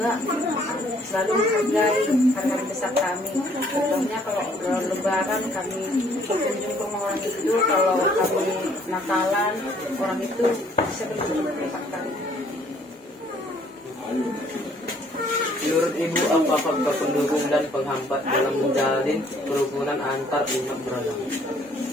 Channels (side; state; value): both; normal; correlation 0.62